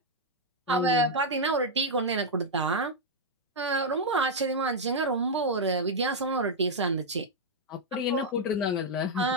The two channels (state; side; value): normal; both; correlation -0.02